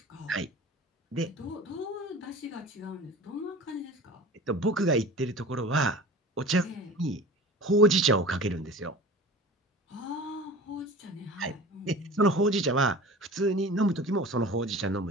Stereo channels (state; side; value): normal; both; correlation 0.38